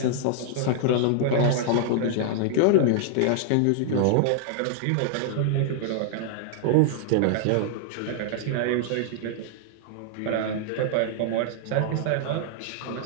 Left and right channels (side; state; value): both; different; correlation -0.01